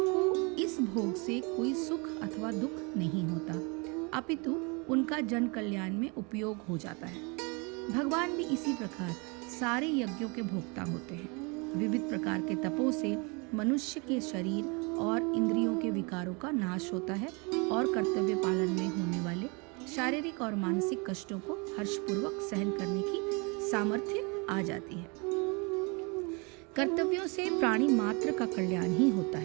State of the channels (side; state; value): left; quieter; 30.7 dB